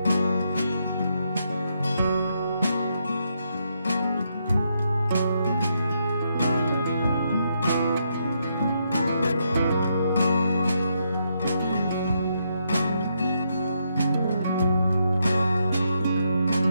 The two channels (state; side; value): inverted; both; correlation -0.78